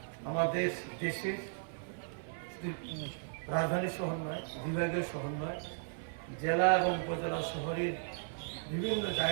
আমাদের দেশের রাজধানী শহর নয়, বিভাগীয় শহর নয়, জেলা এবং উপজেলা শহরের বিভিন্ন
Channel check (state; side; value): silent; left; 54 dB below the other